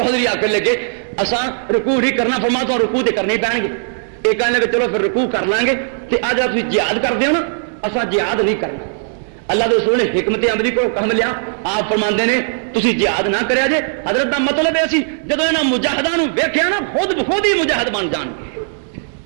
آ کر لگے اساں رکوع نہیں کرنا فرما تو رکوع تے کرنے پین گے یہ کہنے لگے چلو پھر رکوع کر لیں گے کہ اج آپ جہاد کر دیو نا اساں جہاد نہیں کرنا اللہ کے رسول نے حکمت عملی کو کم لیا آپ فرماندے نے تسی جہاد نہ کریا جے حضرت دا مطلب ہے سی جدوں انہاں مجاہداں نو ویکھیا نا خود بخود ہی مجاہد بن جان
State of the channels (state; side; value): silent; left; digital silence